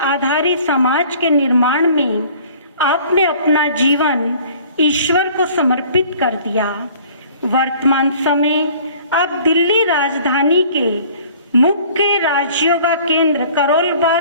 आधारित समाज के निर्माण में आपने अपना जीवन ईश्वर को समर्पित कर दिया। वर्तमान समय आप दिल्ली राजधानी के मुख्य राजयोगा केंद्र करोल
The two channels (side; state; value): both; inverted; correlation -0.51